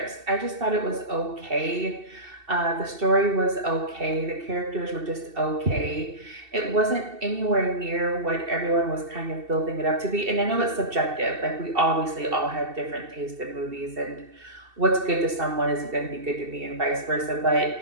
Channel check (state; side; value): late; left; 2.7 ms